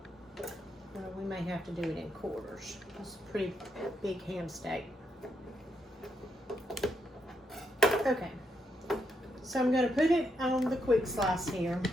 we may have to do it in quarters. It's a pretty big ham steak. Okay. So I'm going to put it on the quick slice here,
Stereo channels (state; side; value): normal; both; correlation 0.79